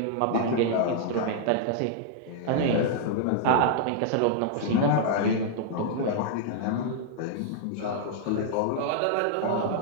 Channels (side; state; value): both; different; correlation -0.01